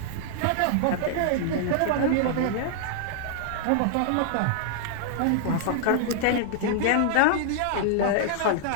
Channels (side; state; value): both; different; correlation -0.01